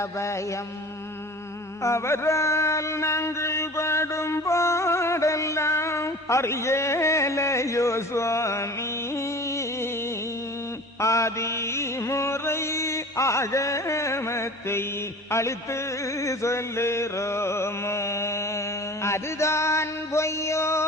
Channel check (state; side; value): normal; both; correlation 0.40